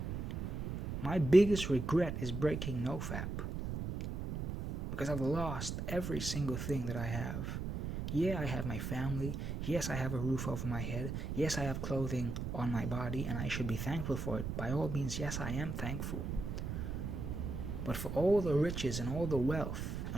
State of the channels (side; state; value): right; noise; rumble, 4 dB below the sound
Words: My biggest regret is breaking nofap, because I've lost every single thing that I have. Yeah, I have my family. Yes, I have a roof over my head. Yes, I have clothing on my body, and I should be thankful for it. By all means, yes, I am thankful. But for all the riches and all the wealth